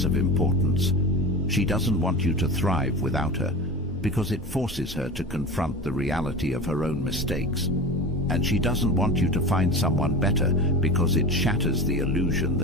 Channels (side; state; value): both; normal; correlation 0.29